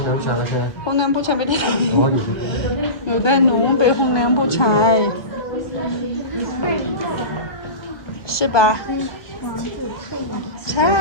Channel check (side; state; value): right; late; 1.7 ms